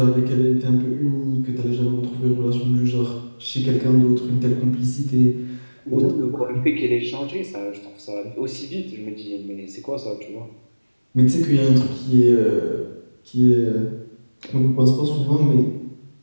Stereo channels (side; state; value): both; inverted; correlation -1.00